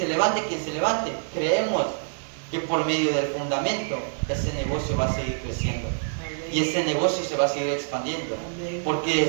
levante quien se levante, creemos que por medio del fundamento ese negocio va a seguir creciendo y ese negocio se va a seguir expandiendo, porque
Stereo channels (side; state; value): left; silent; digital silence